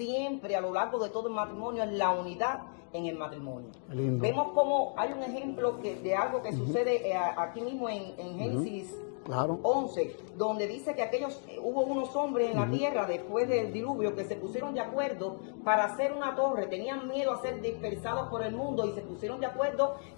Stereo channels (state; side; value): silent; right; 56 dB below the other